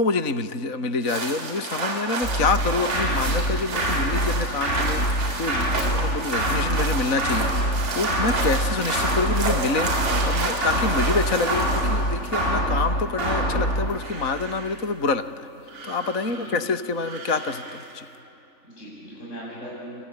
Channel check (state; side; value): late; right; 3.4 ms